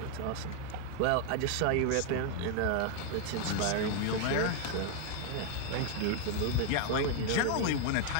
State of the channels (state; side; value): different; both; correlation 0.00